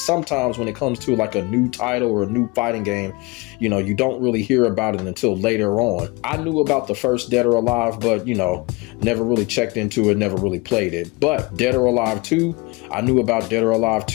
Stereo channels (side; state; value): right; quieter; 25.5 dB